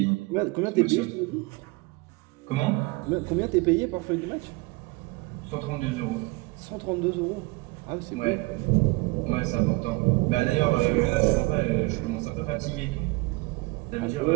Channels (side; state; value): left; quieter; 24.5 dB